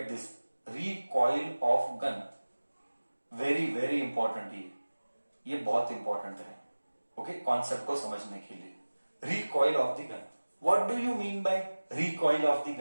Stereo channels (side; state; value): both; inverted; correlation -1.00